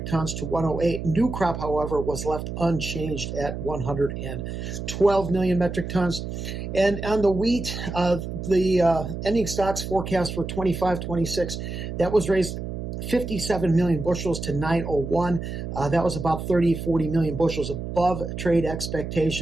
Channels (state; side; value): noise; right; hum, 6 dB below the sound